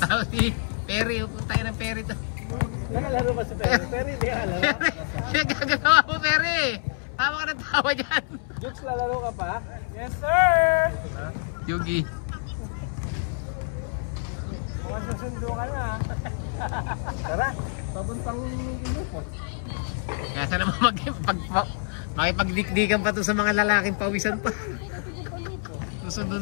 si Perry, punta tayo ng Perry to. Nakalaro pa si Perry. Perry, hindi ka laro. Gagagawa mo Perry. Tama ka ng tawa dyan. Jukes, lalaro ka pa? Yes, sir! Yugi. Mukhang susundo ka na. Tara. Pabuntang grupo. Kaya sana makipagdikdikan pa to sa mga lalaking pawisan pa. Susundo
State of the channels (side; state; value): right; silent; 60 dB below the other